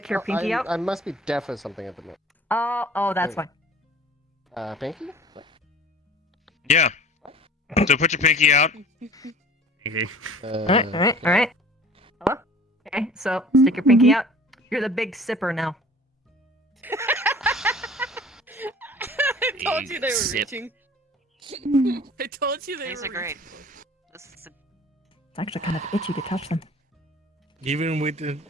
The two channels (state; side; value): normal; both; correlation 0.46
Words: your pinky out. I must be deaf or something at the moment. Oh, that's fine. Pinky? Yeah. So put your pinky out. Alright. Hello? Okay, so stick your pinky out. You're the Big Sipper now. I told you they were Sip. reaching. I told you they These were are great. reaching. This is It's actually kind of itchy to touch them. Even with an